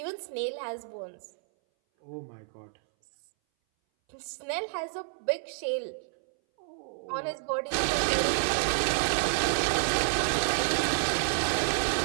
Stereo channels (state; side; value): silent; left; 58 dB below the other